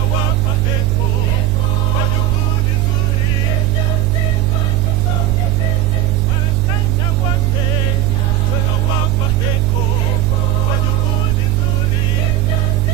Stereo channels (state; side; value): quieter; left; 12.7 dB